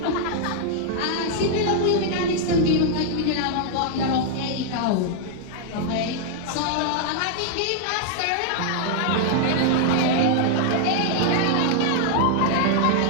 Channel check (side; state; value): both; different; correlation 0.00